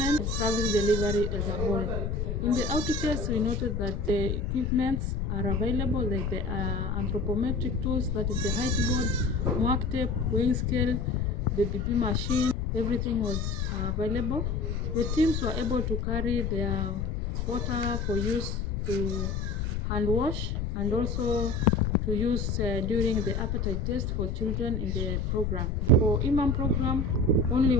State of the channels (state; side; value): noise; left; rumble, 2 dB below the sound